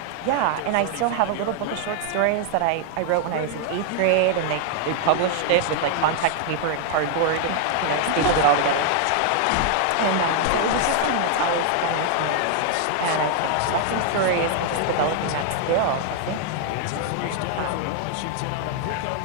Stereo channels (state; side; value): different; both; correlation 0.00